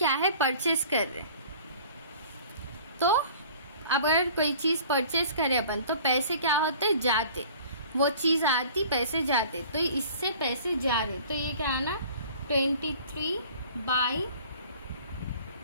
है परचेस कर रहे, तो अगर कोई चीज परचेस करे अपन तो पैसे क्या होते, जाते, वो चीज आती पैसे जाते, तो इससे पैसे जा रहे, तो ये क्या आना, 23 बाई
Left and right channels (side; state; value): both; inverted; correlation -0.48